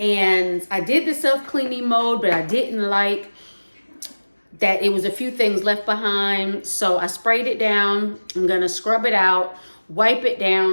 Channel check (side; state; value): both; inverted; correlation -1.00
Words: I did the self-cleaning mode, but I didn't like that it was a few things left behind. So I sprayed it down. I'm gonna scrub it out, wipe it